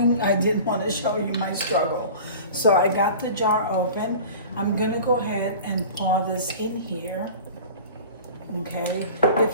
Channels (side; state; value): both; inverted; correlation -0.39